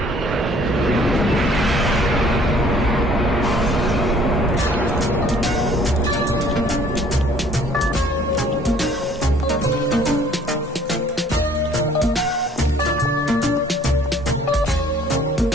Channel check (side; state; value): both; normal; correlation 0.57